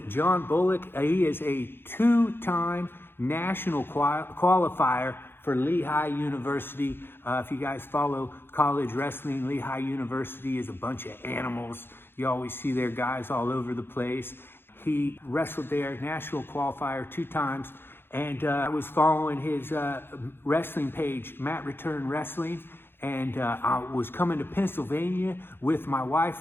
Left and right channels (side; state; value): right; late; 0.10 ms